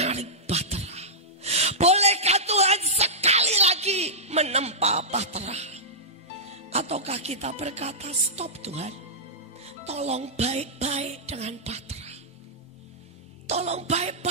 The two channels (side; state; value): both; normal; correlation -0.13